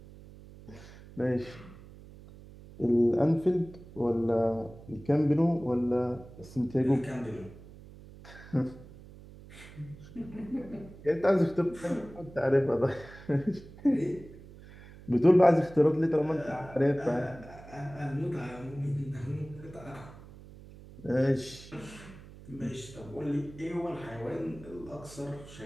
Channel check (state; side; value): noise; right; hum, 18 dB below the sound